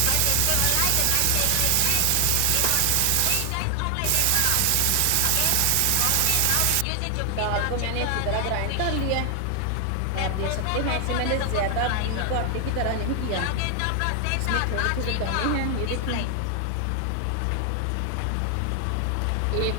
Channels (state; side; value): different; both; correlation 0.00